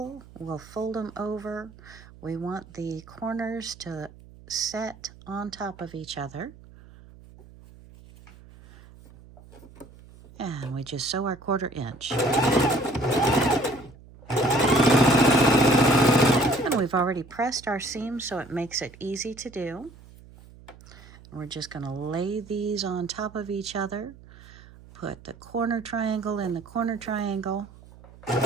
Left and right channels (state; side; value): noise; right; hum, 21 dB below the sound